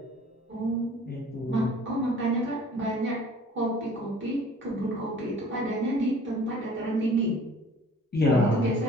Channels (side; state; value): both; normal; correlation 0.50